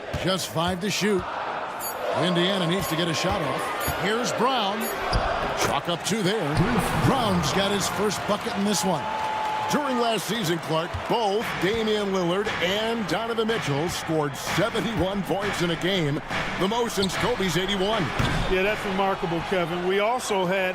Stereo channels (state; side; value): identical; both; correlation 1.00